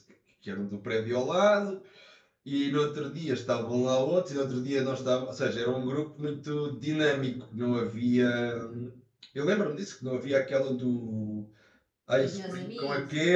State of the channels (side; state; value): both; identical; correlation 1.00